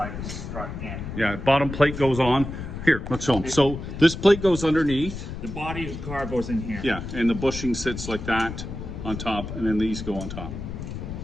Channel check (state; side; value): noise; left; rumble, 8 dB below the sound